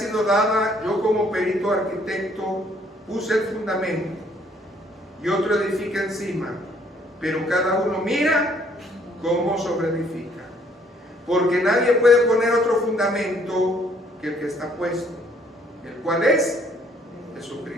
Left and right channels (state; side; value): normal; both; correlation 0.64